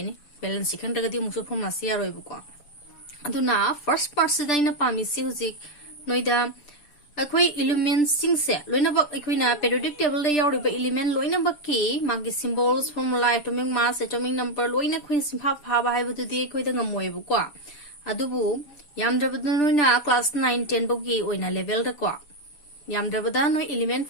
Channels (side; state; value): right; late; 6.8 ms